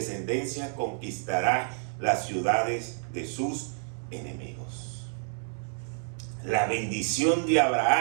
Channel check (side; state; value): left; silent; digital silence